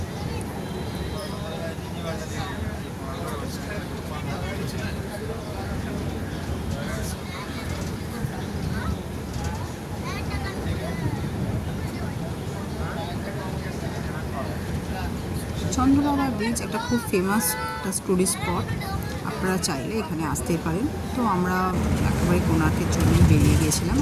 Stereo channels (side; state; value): both; identical; correlation 1.00